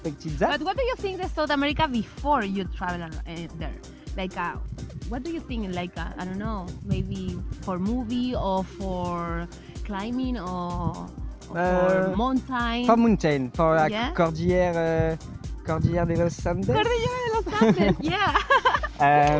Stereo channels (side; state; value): both; identical; correlation 1.00